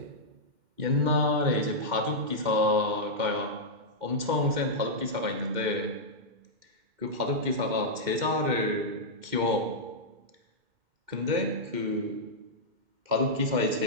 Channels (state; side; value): late; left; 2.1 ms